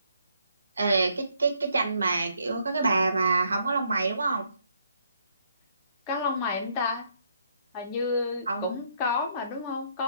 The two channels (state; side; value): inverted; both; correlation -0.71